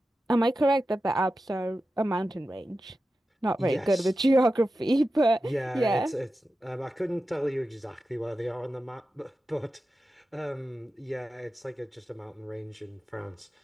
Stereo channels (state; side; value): normal; both; correlation 0.92